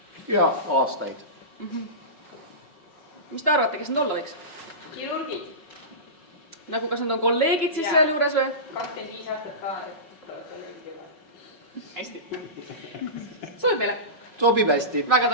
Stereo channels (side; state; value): right; late; 5.4 ms